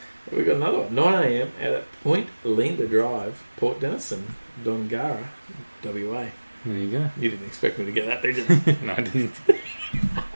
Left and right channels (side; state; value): both; inverted; correlation -1.00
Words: We've got another one. 9 a.m. at Point Linda Drive, Port Denison, Dongara, WA. There you go. You didn't expect me to get that, did you? No, I didn't.